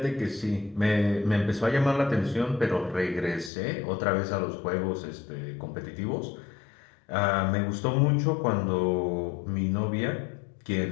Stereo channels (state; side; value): drops out; right; at 3.5 s